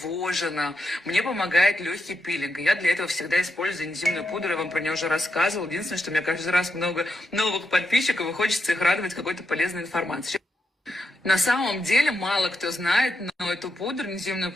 мне помогает легкий пилинг. Я для этого всегда использую энзимную пудру, я вам про нее уже рассказывала. Единственное, что у меня каждый раз много новых подписчиков, и хочется их радовать какой-то полезной информацией. На самом деле мало кто знает, но эту пудру, энзимную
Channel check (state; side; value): normal; both; correlation 0.85